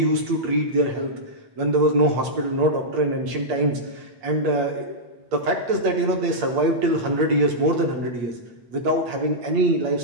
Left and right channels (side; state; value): left; late; 8.5 ms